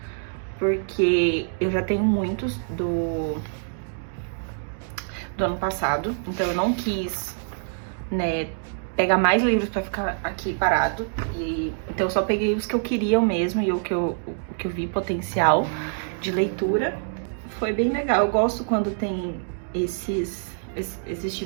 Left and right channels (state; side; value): silent; left; digital silence